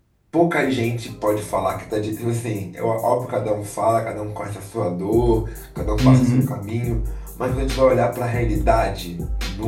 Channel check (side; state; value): both; identical; correlation 1.00